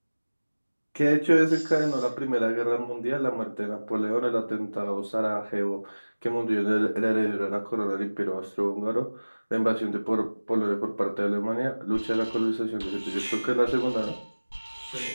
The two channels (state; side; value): inverted; both; correlation -1.00